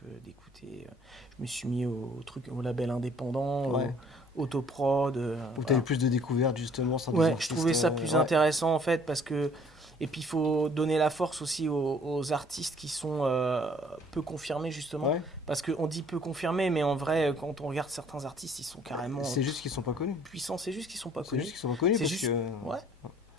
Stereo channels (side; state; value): left; noise; hum, 28 dB below the sound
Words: d'écouter. Je me suis mis au label indépendant, Ouais. au autoprod. Où Voilà. t'avais plus de découvertes justement sans des Ouais, je artistes, trouvais ça plus ouais. intéressant en fait parce que. Et puis il faut donner la force aussi aux artistes qui sont peu confirmés justement. Ouais. Parce qu'on dit peu confirmés, mais en vrai, quand on regarde certains artistes, ils sont carrément C'est juste qu'ils sont pas connus. puissants. C'est juste qu'ils sont pas C'est connus. juste qu'ils sont pas connus C'est parce juste- que. Ouais.